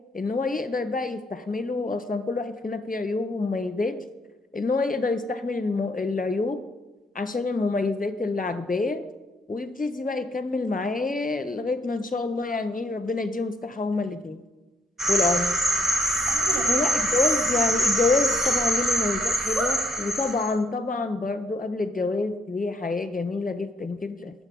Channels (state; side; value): normal; both; correlation 0.70